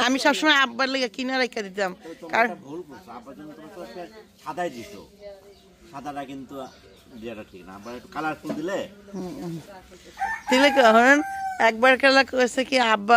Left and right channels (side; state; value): both; identical; correlation 1.00